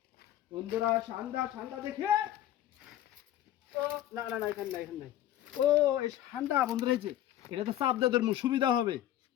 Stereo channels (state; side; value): quieter; right; 12.5 dB